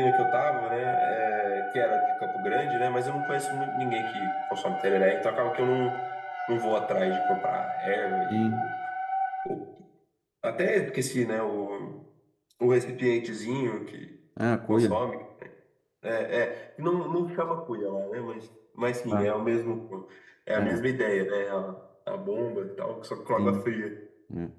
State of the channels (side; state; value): both; identical; correlation 1.00